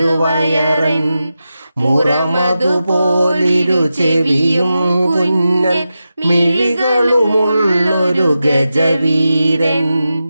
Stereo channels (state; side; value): inverted; both; correlation -0.91